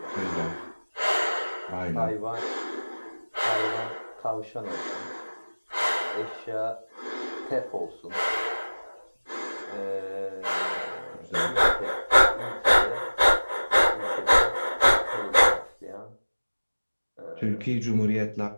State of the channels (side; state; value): both; inverted; correlation -1.00